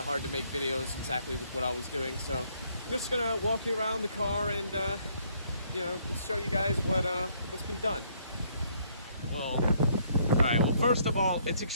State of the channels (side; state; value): both; inverted; correlation -0.68